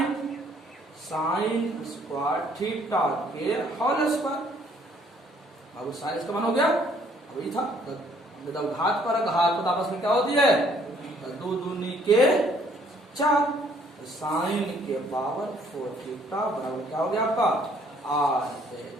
स्क्वायर थीटा के होल स्क्वायर। बाबू साइन इसका मान हो गया, वही था जब घात पर घात तो आपस में क्या होती है, 2 दूनी के 4, साइन के पावर 4 थीटा बराबर क्या हो गया आपका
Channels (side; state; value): both; normal; correlation 0.63